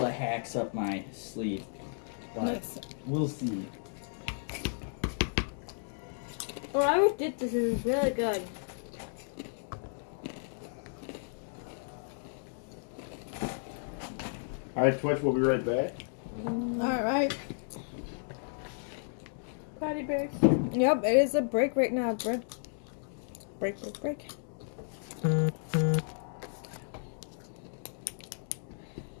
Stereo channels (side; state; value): right; silent; digital silence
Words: of hacks up my sleeve, but Nice. we'll see. Well, I always did this. This is really good. Alright, Twitch, we'll be right back. All right. Party breaks. Yep, it is a break right now. Break.